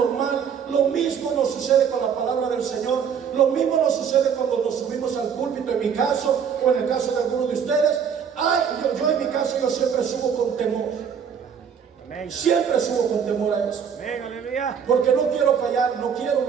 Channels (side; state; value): left; quieter; 7.3 dB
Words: Lo mismo nos sucede con la palabra del Señor. Lo mismo nos sucede cuando nos subimos al púlpito, en mi caso, o en el caso de algunos de ustedes. Yo en mi caso, yo siempre subo con temor. Amén. Siempre subo con temor a eso. Amén, aleluya. Porque no quiero fallar, no quiero